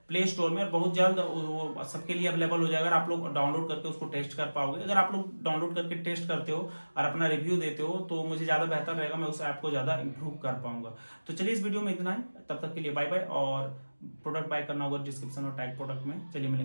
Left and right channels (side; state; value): both; inverted; correlation -1.00